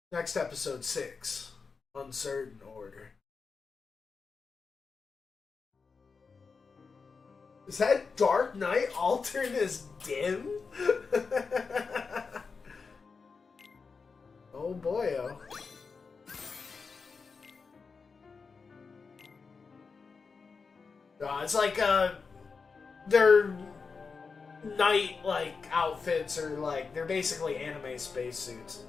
Next episode 6. Uncertain order. Is that Dark Knight altered as dim? Oh boy, oh. It's like, they're night like outfits are like they're basically anime spacesuits.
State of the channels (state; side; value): quieter; right; 4.9 dB